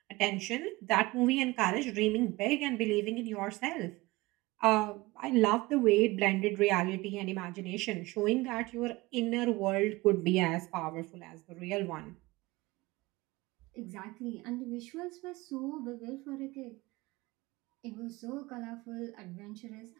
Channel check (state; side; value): quieter; left; 21.2 dB